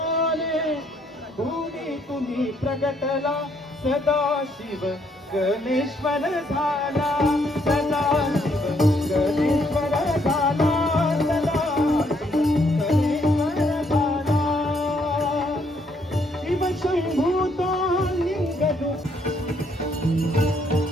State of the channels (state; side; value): normal; both; correlation 0.70